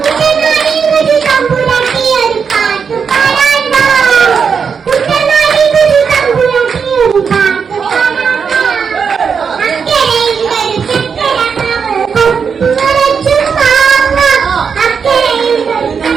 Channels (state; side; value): quieter; left; 6.2 dB